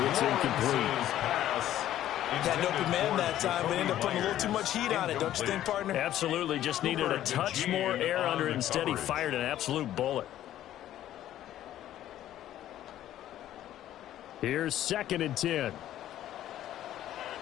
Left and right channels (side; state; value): right; quieter; 12.5 dB